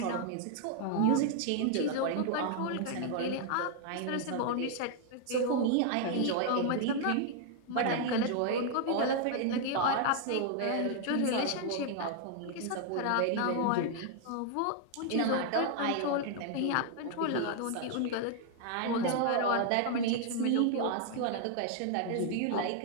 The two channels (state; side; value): different; both; correlation 0.00